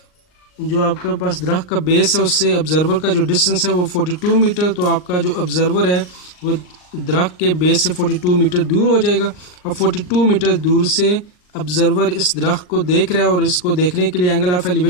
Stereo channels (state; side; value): late; right; 39 ms